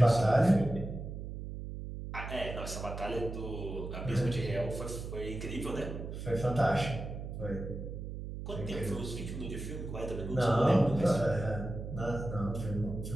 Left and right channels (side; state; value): right; noise; hum, 7 dB below the sound